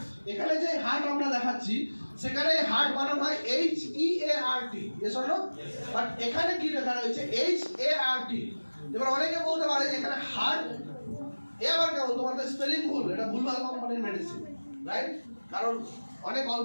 এখানে যে হার্ট আমরা দেখাচ্ছি সেখানে হার্ট বানান হয় HEART, yes or no? But এখানে কি লেখা রয়েছে HART। এবার অনেকে বলতে পারে যে এখানে হার্ট, এ আবার কেমন, তোমাদের স্পেলিং ভুল, এটা ভুলভাল কোম্পানির মেডিসিন, রাইট? কারণ অনেক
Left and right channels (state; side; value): inverted; both; correlation -1.00